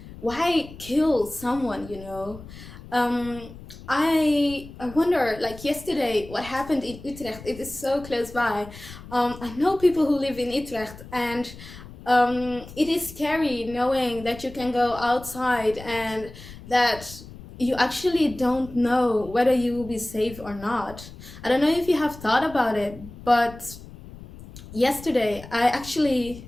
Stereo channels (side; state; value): left; noise; rumble, 16 dB below the sound